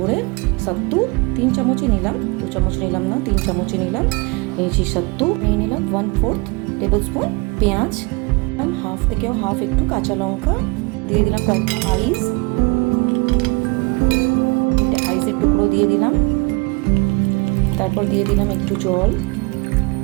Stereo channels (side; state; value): left; quieter; 28.0 dB